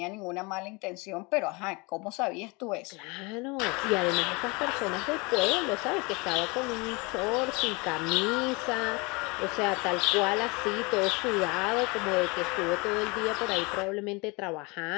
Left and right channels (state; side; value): quieter; right; 27.2 dB